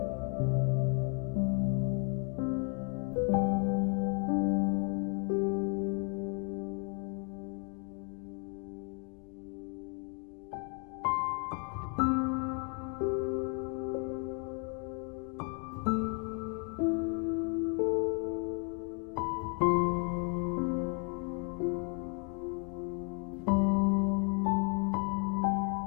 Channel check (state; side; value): quieter; right; 38.3 dB